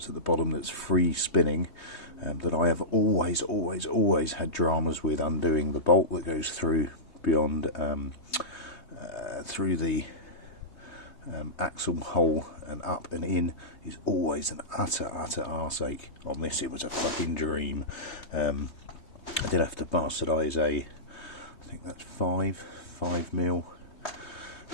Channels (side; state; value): right; late; 3.2 ms